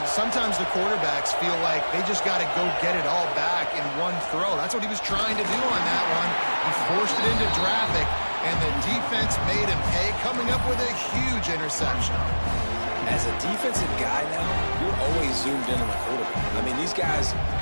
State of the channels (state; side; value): inverted; both; correlation -1.00